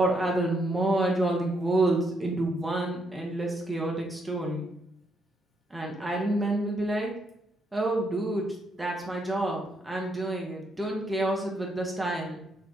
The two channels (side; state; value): both; normal; correlation 0.76